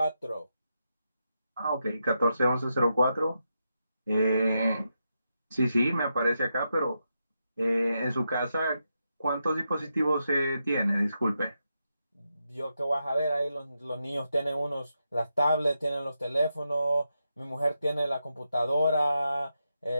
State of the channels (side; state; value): both; inverted; correlation -0.85